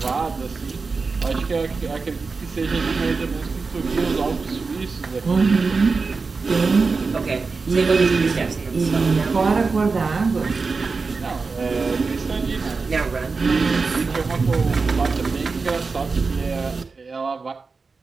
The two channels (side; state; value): left; quieter; 4.4 dB